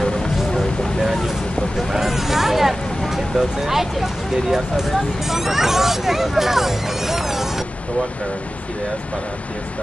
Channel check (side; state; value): both; normal; correlation 0.95